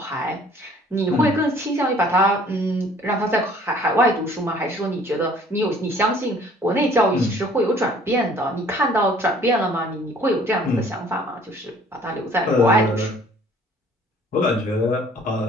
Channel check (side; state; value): both; normal; correlation 0.55